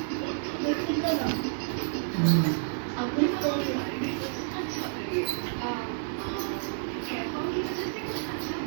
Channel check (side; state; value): left; silent; digital silence